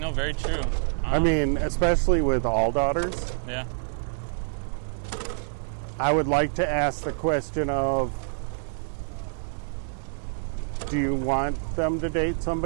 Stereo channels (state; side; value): silent; left; digital silence